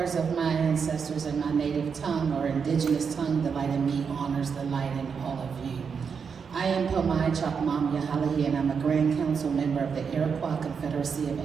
of my ancestors in my native tongue or indigenous tongue, the light in me honors the light in all of you. I am Pomai Chapmam Yahalahi, and I'm a Grand Council member of the Iroquois Confederacy of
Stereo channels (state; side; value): quieter; left; 6.2 dB